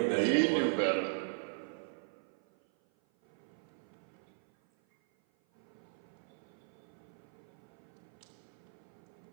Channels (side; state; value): left; silent; 52 dB below the other